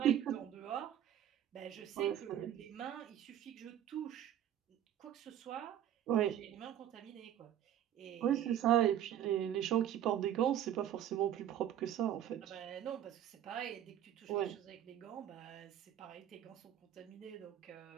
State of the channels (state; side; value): quieter; left; 10.8 dB